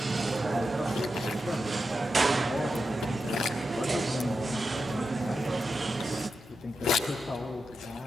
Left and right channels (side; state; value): both; normal; correlation 0.89